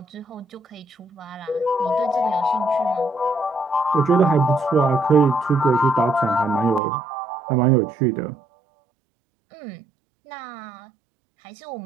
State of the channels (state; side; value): drops out; left; at 6.8 s